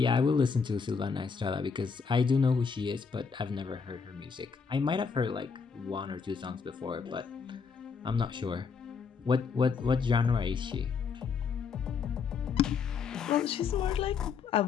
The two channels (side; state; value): right; quieter; 5.6 dB